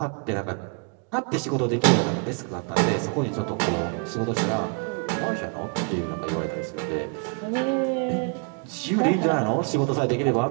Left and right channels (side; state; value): left; quieter; 38.2 dB